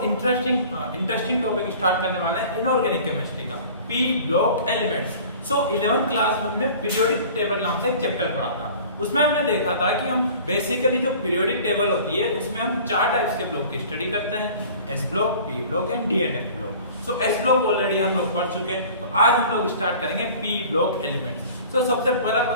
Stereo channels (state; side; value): inverted; both; correlation -0.45